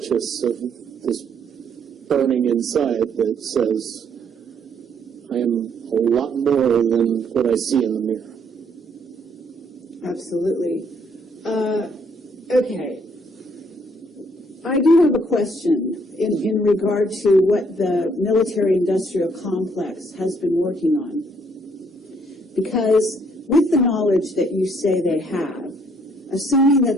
of this burning inside that says, I am a lot more than what I see in the mirror. Absolutely. Okay. I do have a question in regard to what the military-industrial complex has been working on. Because with the knowledge that you say they have, assuming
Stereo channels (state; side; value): normal; both; correlation 0.67